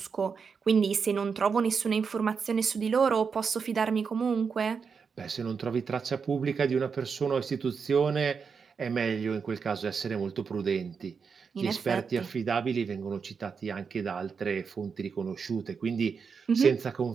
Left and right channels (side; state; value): left; quieter; 5.8 dB